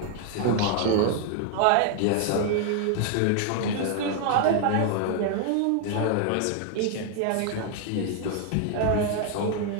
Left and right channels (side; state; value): both; different; correlation 0.00